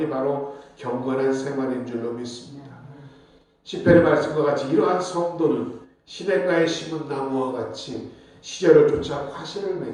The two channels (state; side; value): identical; both; correlation 1.00